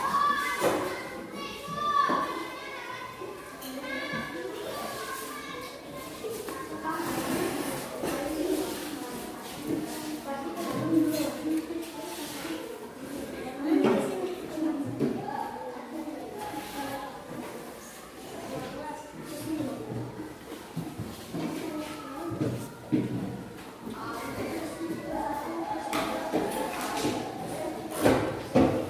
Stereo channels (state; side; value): identical; both; correlation 1.00